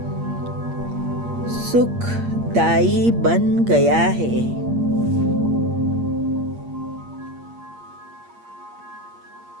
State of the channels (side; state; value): left; late; 8.6 ms